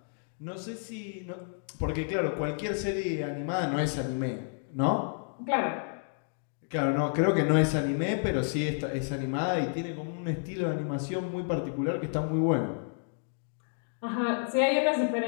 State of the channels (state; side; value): silent; right; digital silence